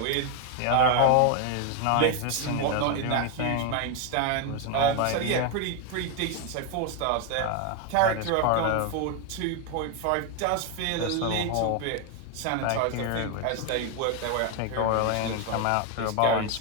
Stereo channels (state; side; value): different; both; correlation 0.01